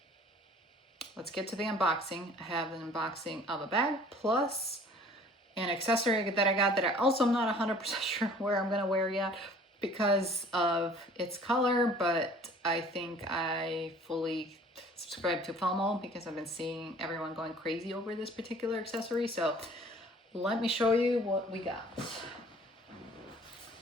let's get to the unboxing. I have an unboxing of a bag plus an accessory that I got that I also am not 100% sure where I'm gonna wear yet because of its color, but I think I fully subscribe to FOMO because I've been seeing everyone going crazy over this particular accessory. So let me show you what we got.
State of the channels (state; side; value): normal; both; correlation 0.51